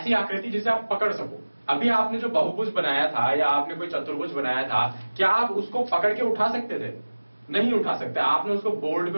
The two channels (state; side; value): inverted; both; correlation -1.00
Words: आकृति जिसे आप पकड़ सको। अभी आपने जो बहुभुज बनाया था या आपने कोई चतुर्भुज बनाया था, क्या आप उसको पकड़ के उठा सकते थे? नहीं उठा सकते। आपने उसको बोर्ड पे